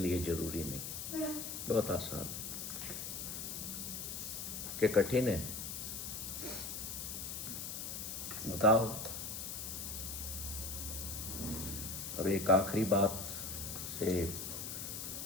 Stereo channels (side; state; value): left; noise; hiss, 5 dB below the sound